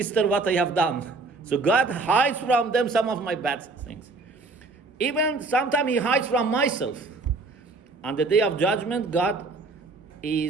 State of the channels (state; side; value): quieter; left; 3.6 dB